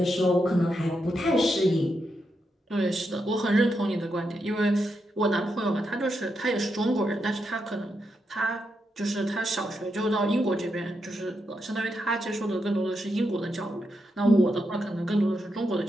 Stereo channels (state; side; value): normal; both; correlation 0.84